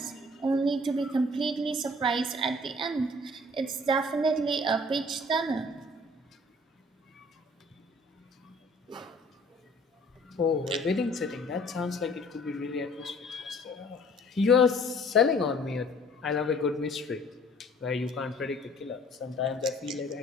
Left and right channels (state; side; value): normal; both; correlation 0.54